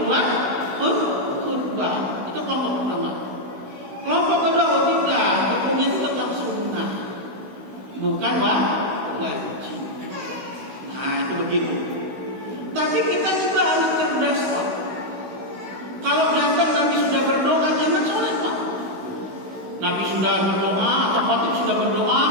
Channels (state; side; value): late; left; 16 ms